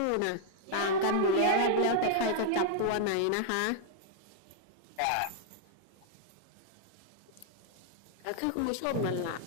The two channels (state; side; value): different; both; correlation -0.01